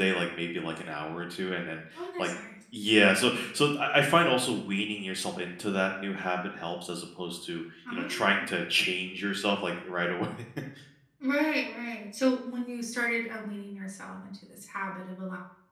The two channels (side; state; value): both; identical; correlation 1.00